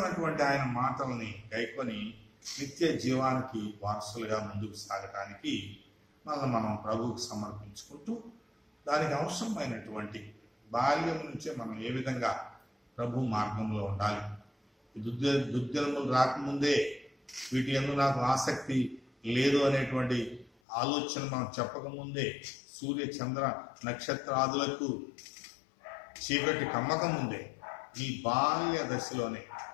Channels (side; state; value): right; drops out; at 20.5 s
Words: ఆయన మాటల్ని గైకొని నిత్య జీవానికి వారసులుగా ముందుకు సాగటానికి మనం ప్రభువుకు సమర్పించుకుంటూ దానికి అవసరమైనటువంటి బాల్యం నుంచే మనం ఏ విధంగా ప్రభు మార్గంలో ఉండాలి, దుర్దినములు రాకముందే వీటి యందు నాకు ఆసక్తి లేదు అనేటువంటి ఆలోచన మనం చెప్పకముందే, సూర్య చంద్ర నక్షత్రాదులకు చీకటి కమ్మక ముందే, నీ బాల్య దశలోనే